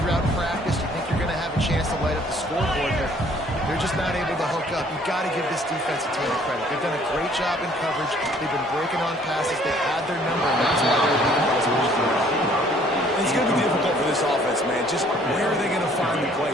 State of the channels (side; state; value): both; normal; correlation 0.59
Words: practice. You think you're going to have a chance to light up the scoreboard, but they're just not able to hook up. You got to give this defense a ton of credit. They've done a great job in coverage. They've been breaking on passes. They've had their number, and that's why they're leading by as much as they are. It's going to be difficult for this offense, man. Just where are they going to find the